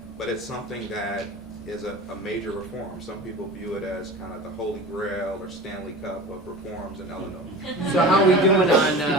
but it's something that is a major reform. Some people view it as kind of the holy grail or Stanley Cup of reforms in Illinois. So how are we doing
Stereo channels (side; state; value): both; normal; correlation 0.35